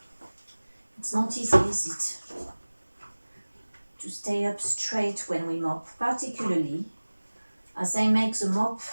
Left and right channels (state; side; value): inverted; both; correlation -1.00